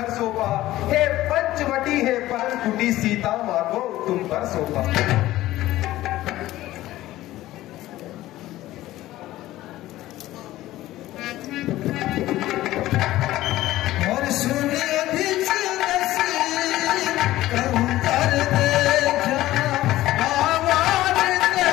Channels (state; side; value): quieter; right; 15.7 dB